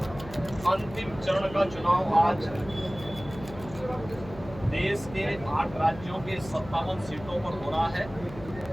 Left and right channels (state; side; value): noise; left; hum, 15 dB below the sound